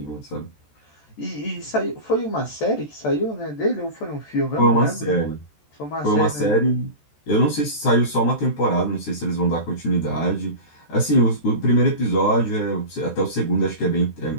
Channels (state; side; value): late; right; 13 ms